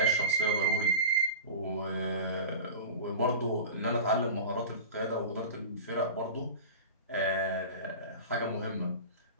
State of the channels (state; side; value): inverted; both; correlation -0.30